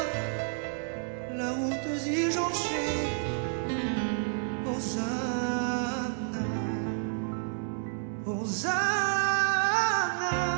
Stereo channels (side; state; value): left; silent; 58 dB below the other